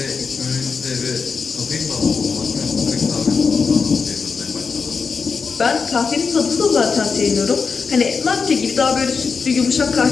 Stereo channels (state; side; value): quieter; right; 5.2 dB